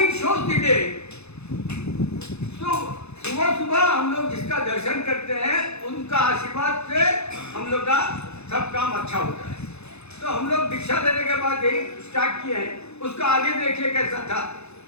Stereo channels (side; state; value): right; late; 0.80 ms